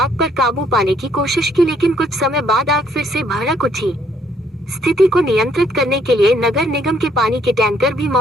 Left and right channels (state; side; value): normal; both; correlation 0.67